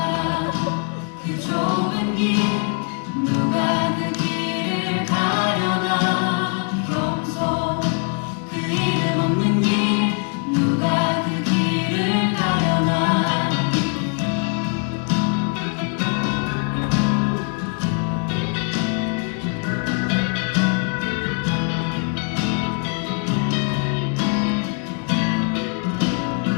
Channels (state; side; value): quieter; right; 39.1 dB